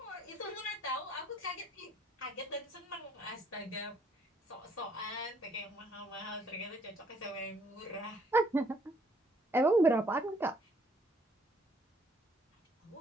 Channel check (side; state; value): both; normal; correlation 0.64